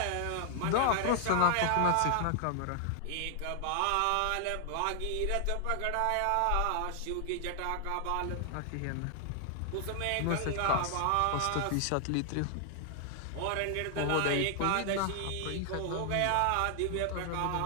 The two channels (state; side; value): different; both; correlation 0.00